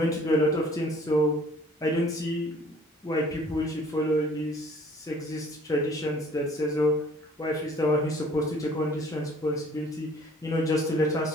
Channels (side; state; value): both; normal; correlation 0.54